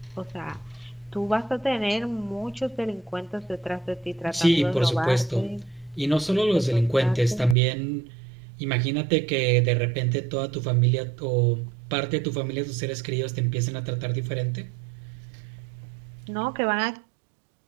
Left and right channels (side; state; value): left; drops out; at 7.6 s